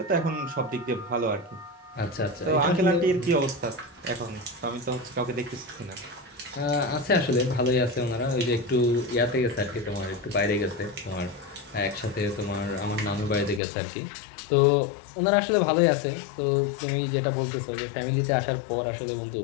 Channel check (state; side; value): drops out; right; at 13.6 s